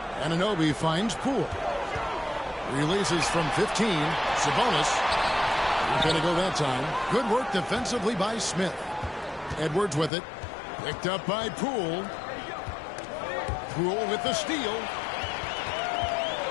Anunoby finds Poole. Releases from 15. Sabonis. Not going to go that time. Good work defensively by Smith. Edwards with it. Picked up by Poole. Poole with the steal.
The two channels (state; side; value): drops out; right; at 10.1 s